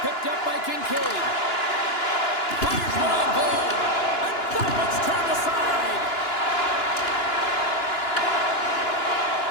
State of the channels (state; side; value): late; right; 2.9 ms